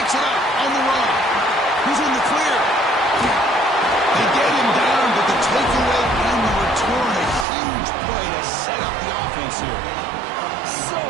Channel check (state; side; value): drops out; left; at 7.5 s